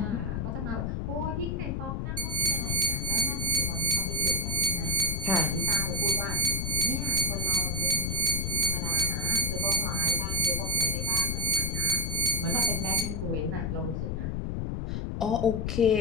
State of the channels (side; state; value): left; noise; rumble, 1 dB below the sound